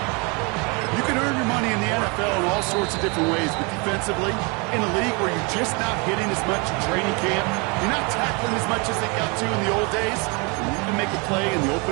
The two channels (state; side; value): quieter; left; 30.6 dB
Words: You can earn your money in the NFL in all sorts of different ways, but defensively, in a league where you're just not hitting as much in training camp, you're not tackling as much as they got to in the old days, you can make a play in the